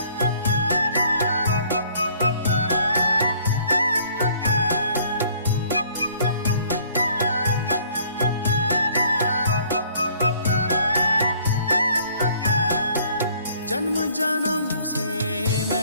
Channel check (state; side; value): inverted; both; correlation -0.59